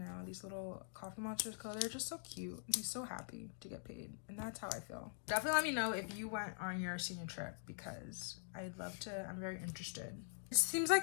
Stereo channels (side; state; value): right; silent; digital silence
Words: These little coffee monsters color, they're just so cute. I'm so happy to get paid, and that's how I feel. Definitely let me know if you went on your senior trip because I'd love to. I'm very interested. It seems